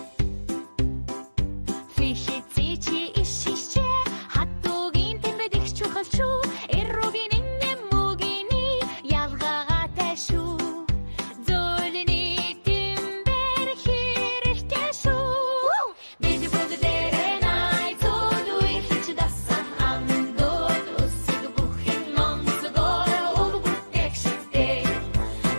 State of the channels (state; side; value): inverted; both; correlation -1.00